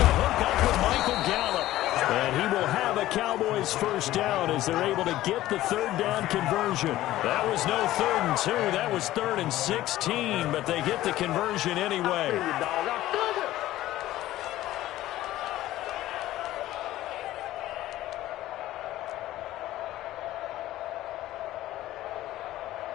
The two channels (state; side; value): quieter; right; 15.1 dB